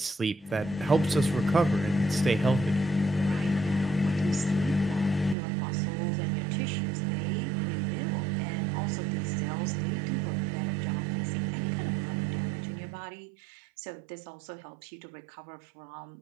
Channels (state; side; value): drops out; left; at 5.4 s